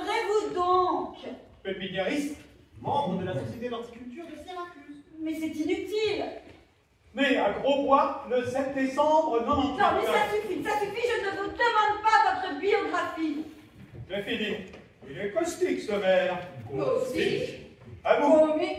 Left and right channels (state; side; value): identical; both; correlation 1.00